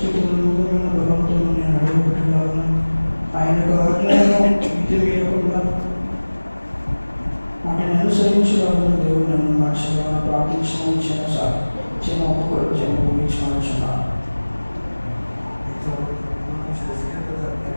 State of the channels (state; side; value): inverted; both; correlation -1.00